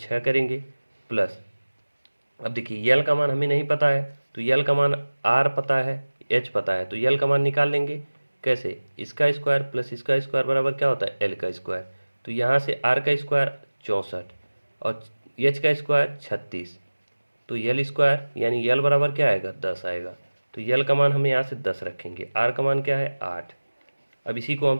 करेंगे प्लस। अब देखिए यल का मान हमें नहीं पता है, तो यल का मान आर पता है, एच पता है, तो यल का मान निकाल लेंगे कैसे, इसका स्क्वायर प्लस इसका स्क्वायर बराबर क्या होता है एल का स्क्वायर। तो यहाँ से आर का स्क्वायर 64 और एच का स्क्वायर 36, तो यल स्क्वायर यानी यल बराबर क्या आएगा 10 आएगा। तो यल का मान हम यहाँ से 10 रखेंगे, आर का मान क्या है 8। अब इसी को हम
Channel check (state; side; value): inverted; both; correlation -1.00